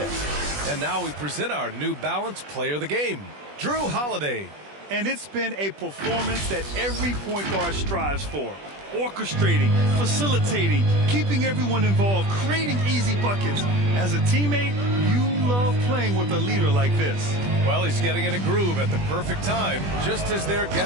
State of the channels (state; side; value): late; left; 20 ms